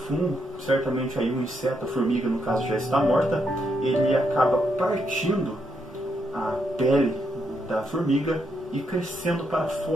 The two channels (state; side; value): normal; both; correlation 0.78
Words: certamente aí um inseto, a formiga no caso já está morta, ele acaba partindo a pele da formiga e crescendo para